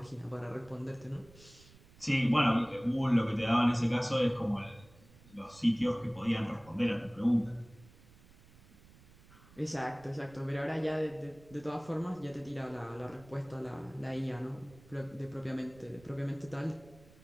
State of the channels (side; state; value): right; noise; rumble, 24 dB below the sound